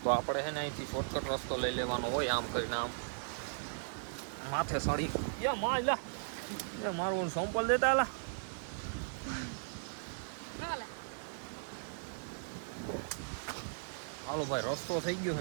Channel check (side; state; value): left; silent; 53 dB below the other